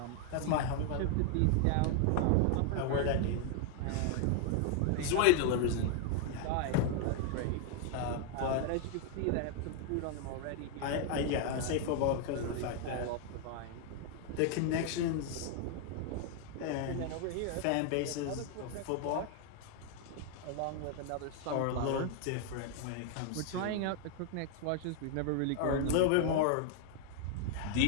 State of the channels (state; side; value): different; both; correlation 0.00